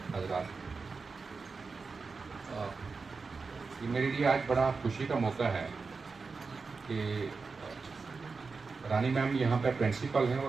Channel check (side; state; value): left; quieter; 4.5 dB